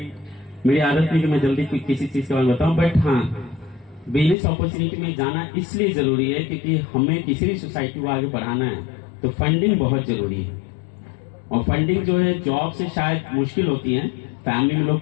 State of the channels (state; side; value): drops out; right; at 4.4 s